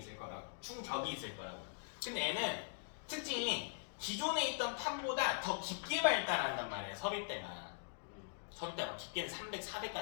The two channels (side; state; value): right; silent; digital silence